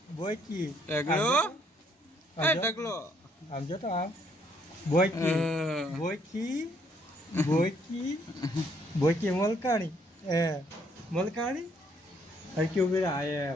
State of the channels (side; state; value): both; normal; correlation 0.68